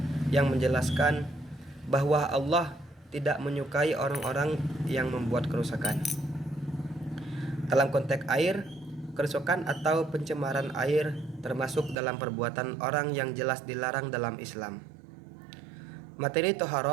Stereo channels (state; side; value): drops out; left; at 12.0 s